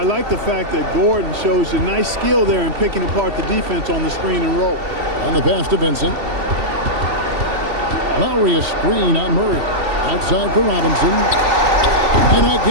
like the fact that Gordon shows you nice skill there in picking apart the defense on the screen and roll. And the pass to Vincent. Lowry a screen on Murray. Outside for Robinson. And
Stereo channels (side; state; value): left; late; 3.1 ms